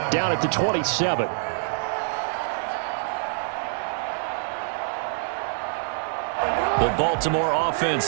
down at the 27. The Baltimore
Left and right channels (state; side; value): silent; left; digital silence